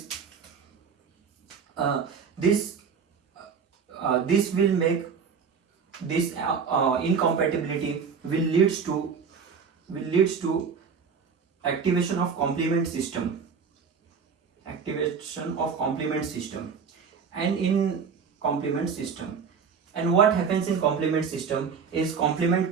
this will make this incompatibility will leads to activation of complement system, and in complement system, and what happens in complement system is complement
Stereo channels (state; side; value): quieter; left; 6.1 dB